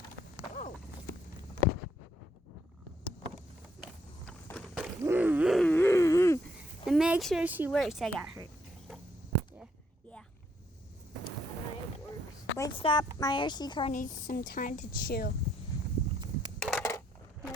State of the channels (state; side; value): normal; both; correlation 0.71